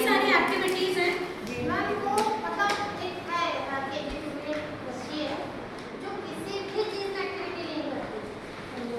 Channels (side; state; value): both; identical; correlation 1.00